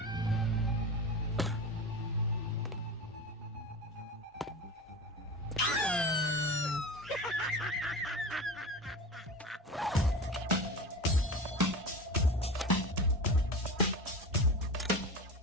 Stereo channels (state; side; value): normal; both; correlation 0.29